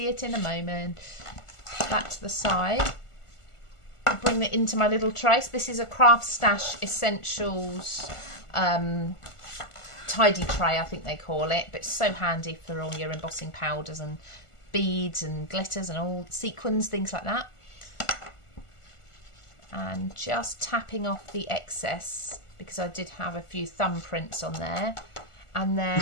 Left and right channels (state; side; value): late; right; 1.4 ms